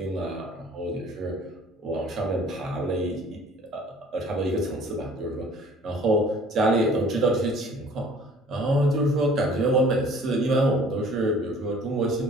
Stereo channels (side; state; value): both; normal; correlation 0.51